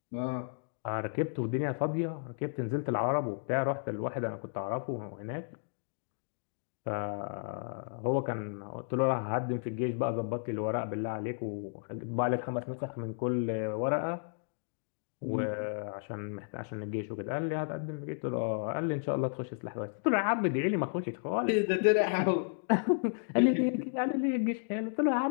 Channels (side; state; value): right; silent; digital silence